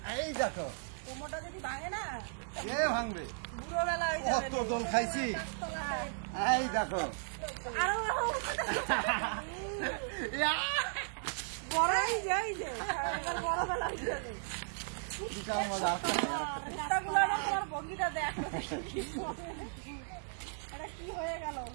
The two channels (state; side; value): silent; left; digital silence